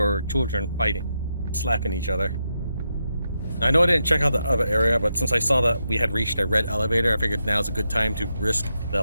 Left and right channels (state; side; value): inverted; both; correlation -0.84